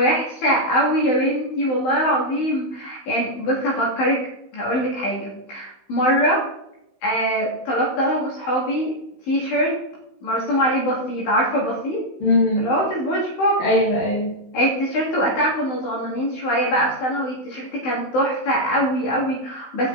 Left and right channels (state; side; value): late; right; 16 ms